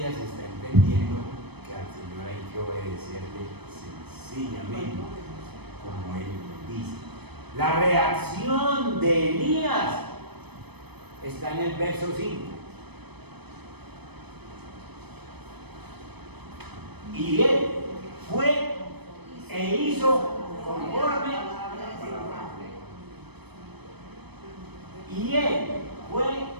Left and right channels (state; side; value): late; left; 0.98 ms